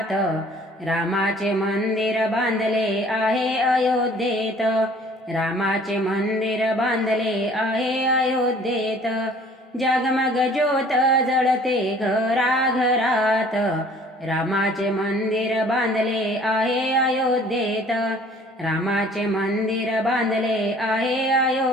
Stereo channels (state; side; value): normal; both; correlation 0.53